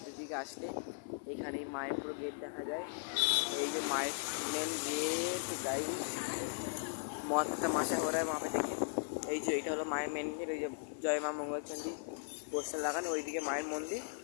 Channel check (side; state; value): right; silent; 53 dB below the other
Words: দিকে আসলে এখানেই মায়ের পুরো গেট দেখা যায়। এই যে মায়ের মেন গেট গাই মহাত্মা মাসা ঘোরায় মাপে দেখে। এই যে এটা হলো মায়ের মেন গেট। ওই যে জয় মা মঙ্গলচণ্ডী পোস্টার লাগানো, ওইদিকে মায়ের মন্দির,